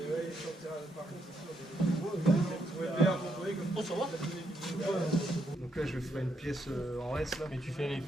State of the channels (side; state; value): both; normal; correlation 0.78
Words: Donc là, je ferai une pièce en S là. Mais tu fais les